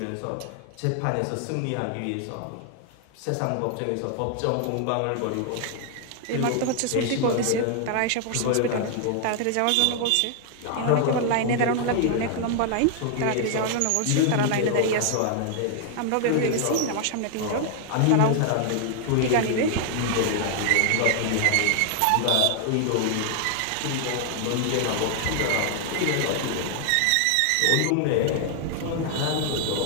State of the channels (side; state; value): both; different; correlation 0.00